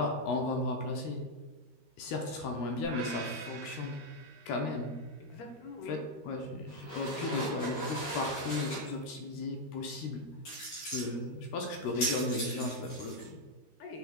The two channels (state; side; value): late; right; 13 ms